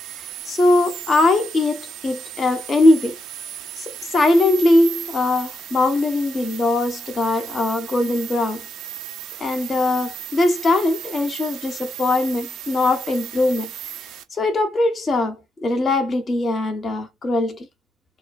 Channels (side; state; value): both; normal; correlation 0.84